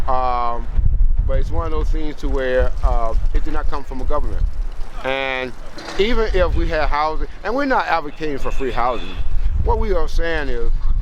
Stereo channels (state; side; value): identical; both; correlation 1.00